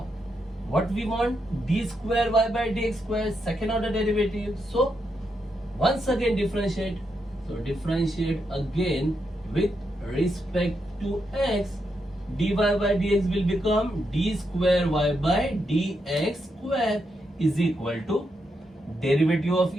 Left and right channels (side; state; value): both; normal; correlation 0.82